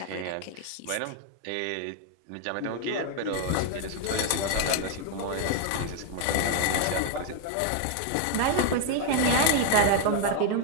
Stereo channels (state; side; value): different; both; correlation 0.00